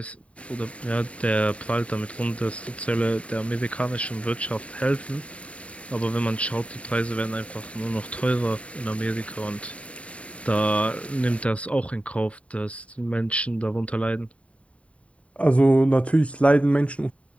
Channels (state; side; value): late; right; 0.064 ms